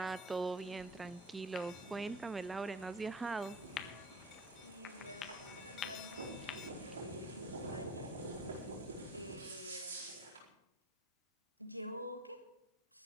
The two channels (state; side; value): normal; both; correlation 0.39